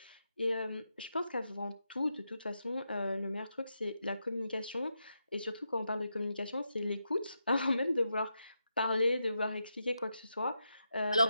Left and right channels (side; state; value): both; inverted; correlation -0.85